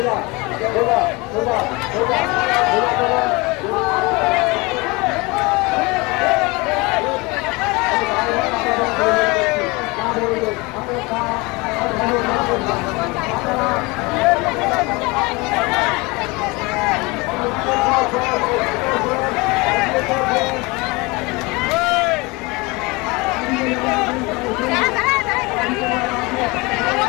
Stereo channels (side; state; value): right; quieter; 25.3 dB